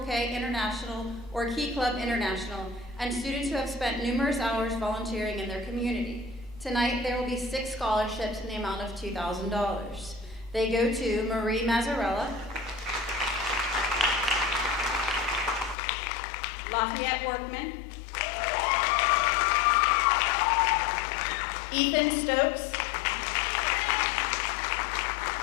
International or Key Club International and students who have spent numerous hours volunteering in their community. Tonight, there will be 6 scholarships in the amount of $2,000. They go to Marie Mazzarella, Lafayette Workman, Ethan Stokes,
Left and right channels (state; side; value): drops out; right; at 15.8 s